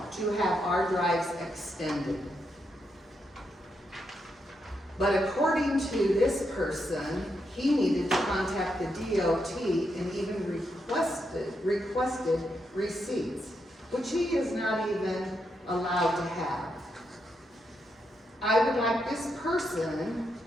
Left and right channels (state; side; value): normal; both; correlation 0.82